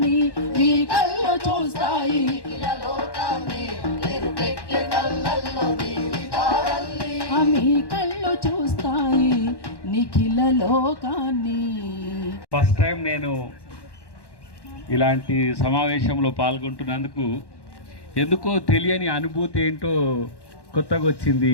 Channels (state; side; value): late; right; 1.1 ms